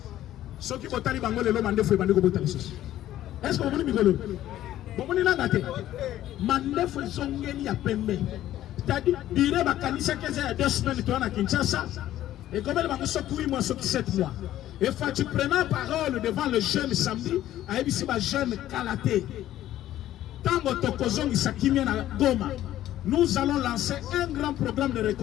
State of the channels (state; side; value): quieter; right; 13.2 dB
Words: Ce qui botali bango le lo mandefu et bandeko botali sosi. Est-ce que vous voulez migolo? Bomoni nangate mandefu zongeli ya pembe c'est-à-dire dire bakanisa keza ya 2 semaines to na Kinshasa et comme elle va se 8 mois sur 7 mois et Fachi prenant parole devant le jeune samedi a ebisi ba jeune Kalaté tango tokozongi sakimia na Goma nous allons lancer un grand programme de